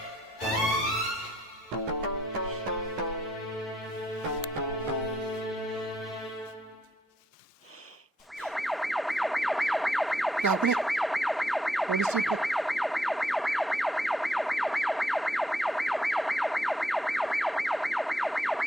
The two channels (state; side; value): normal; both; correlation 0.74